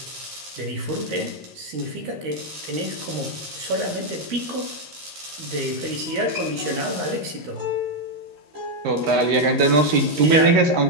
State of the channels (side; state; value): left; late; 13 ms